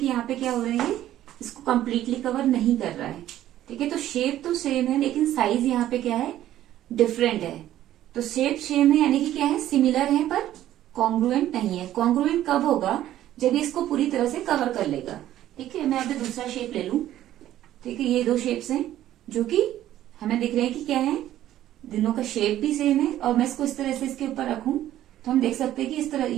यहाँ पे क्या हो रहा है, इसको कंप्लीटली कवर नहीं कर रहा है. ठीक है, तो शेप तो सेम है लेकिन साइज यहाँ पे क्या है, डिफरेंट है. तो शेप सेम है यानी कि क्या है, सिमिलर है पर कॉन्ग्रुएंट नहीं है. कॉन्ग्रुएंट कब होगा, जब इसको पूरी तरह से कवर कर लेगा. ठीक है, मैं अभी दूसरा शेप ले लूं. ठीक है, ये दो शेप्स हैं जो कि हमें दिख रहे हैं कि क्या है, दोनों का शेप भी सेम है. और मैं इसको इस तरह से इसके ऊपर रखूं तो हम देख सकते हैं कि इस तरह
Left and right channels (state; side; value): quieter; left; 12.9 dB